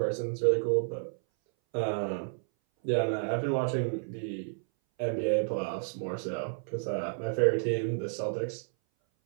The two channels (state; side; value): silent; left; 57 dB below the other